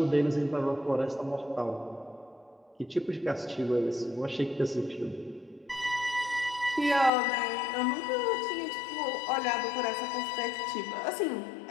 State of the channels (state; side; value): drops out; right; at 7.1 s